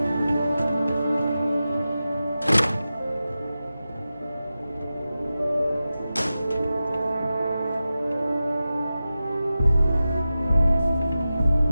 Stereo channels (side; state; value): both; inverted; correlation -0.93